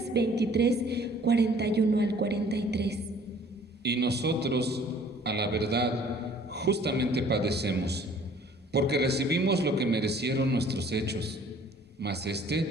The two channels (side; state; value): both; normal; correlation 0.54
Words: 23, 41 al 43. Y nosotros, a la verdad, justamente padecemos, porque recibimos lo que merecieron nuestros hechos, mas